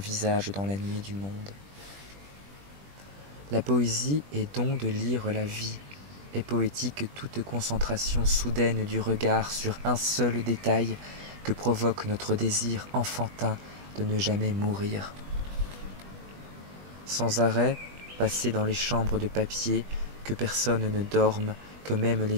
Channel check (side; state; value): left; late; 20 ms